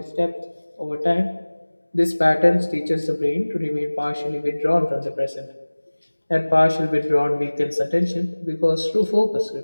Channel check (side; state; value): both; inverted; correlation -1.00